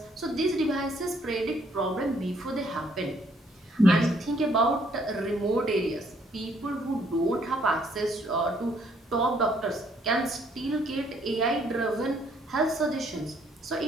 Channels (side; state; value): both; normal; correlation 0.66